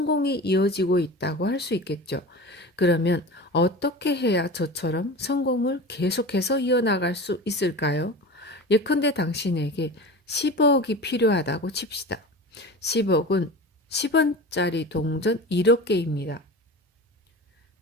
이어지고 있다고 할 수 있겠죠. 그러면 어떻게 해야 저처럼 성공을 계속해서 이어나갈 수 있을까요? 예컨대 당신에게 10억이 필요하다고 칩시다. 10억은 10원짜리 동전 1억 개입니다.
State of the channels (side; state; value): both; normal; correlation 0.32